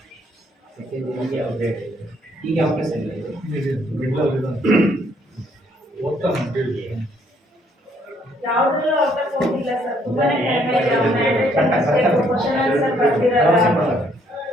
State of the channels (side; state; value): both; normal; correlation 0.67